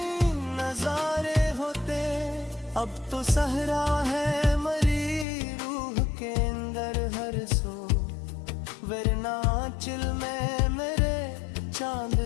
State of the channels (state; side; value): drops out; right; at 5.2 s